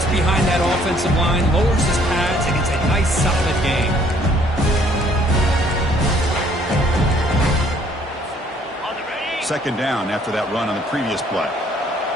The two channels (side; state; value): both; normal; correlation 0.62